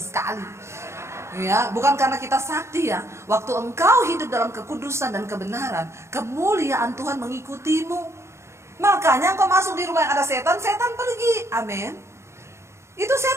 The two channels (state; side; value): late; left; 0.13 ms